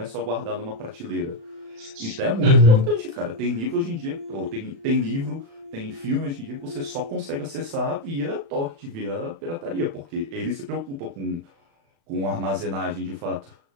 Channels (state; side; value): late; left; 36 ms